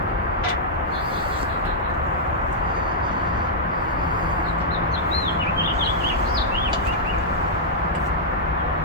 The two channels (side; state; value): both; normal; correlation -0.08